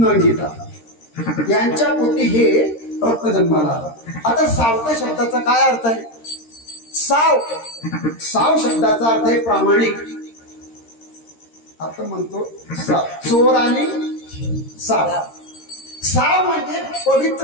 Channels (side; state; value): right; late; 13 ms